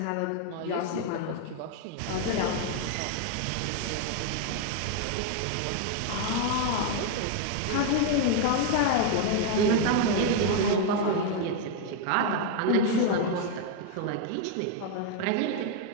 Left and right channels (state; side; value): different; both; correlation 0.00